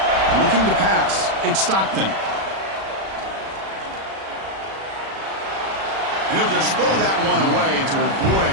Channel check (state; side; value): late; left; 36 ms